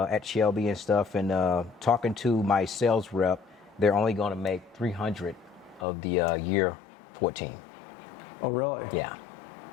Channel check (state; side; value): drops out; right; at 5.9 s